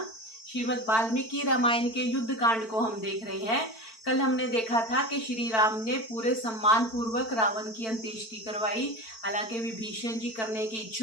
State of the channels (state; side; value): late; right; 4.5 ms